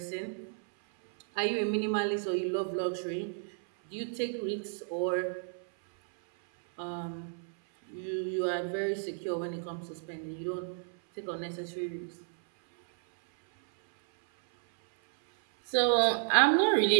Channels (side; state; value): left; silent; 57 dB below the other